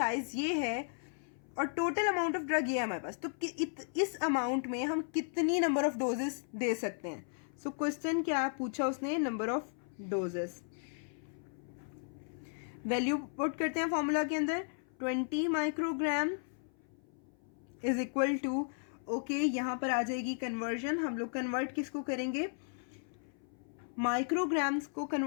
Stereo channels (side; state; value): right; silent; 54 dB below the other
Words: ये है और टोटल अमाउंट ऑफ ड्रग ये है हमारे पास, तो इस अमाउंट में हम कितनी नंबर ऑफ डोजेस दे सकते हैं। सो क्वेश्चन क्या पूछा उसने, number of doses. Value put करते हैं फॉर्मूला के अंदर, 20 microgram is equal to, okay यहाँ पर आ जाएगी कन्वर्जन। हम लोग कन्वर्ट किसको करेंगे, माइक्रोग्राम्स को